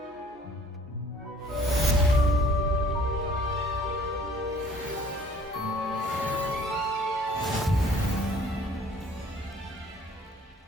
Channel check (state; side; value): normal; both; correlation 0.55